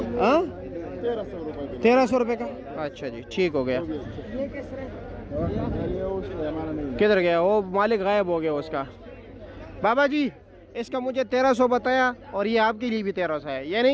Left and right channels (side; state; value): both; identical; correlation 1.00